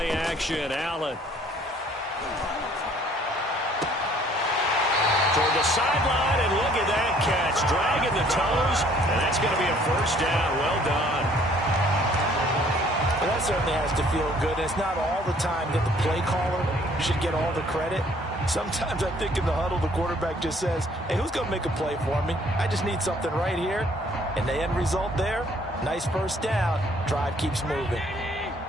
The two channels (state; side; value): normal; both; correlation 0.59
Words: action, Allen. Toward the sideline, and look at that catch. Dragging the toes, and that's going to be a 1st down. Well done. Well, that certainly has to feel good. And it's not all the time that the play caller should get all the credit. Sometimes I think in the huddle, the quarterback just says, hey, who's going to make a play for me? I just need something right here. And the end result there, nice 1st down. Drive keeps moving.